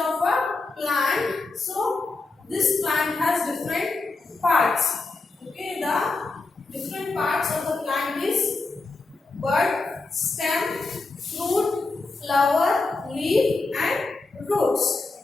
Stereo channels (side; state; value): right; quieter; 3.6 dB